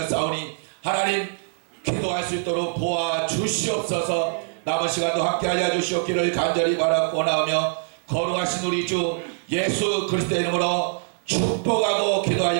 하나님 기도할 수 있도록 도와주시옵소서. 남은 시간도 함께 하여 주시옵기를 간절히 바라고 나오며 거룩하신 우리 주 예수 그리스도의 이름으로 축복하고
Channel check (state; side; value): silent; left; 59 dB below the other